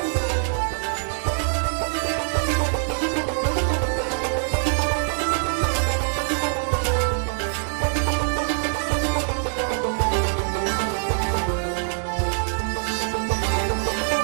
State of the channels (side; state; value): left; silent; digital silence